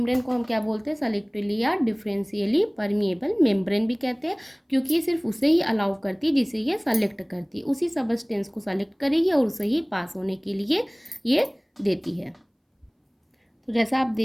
को हम क्या बोलते हैं, सेलेक्टिवली या डिफरेंशियली परमिएबल मेम्ब्रेन भी कहते हैं, क्योंकि ये सिर्फ उसे ही अलाउ करती है जिसे ये सेलेक्ट करती है, उसी सब्सटेंस को सेलेक्ट करेगी और उसे ही पास होने के लिए ये देती है। तो जैसा आप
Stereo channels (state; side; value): identical; both; correlation 1.00